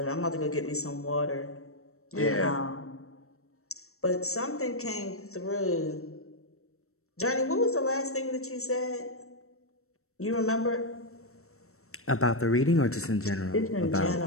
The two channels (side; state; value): right; late; 0.63 ms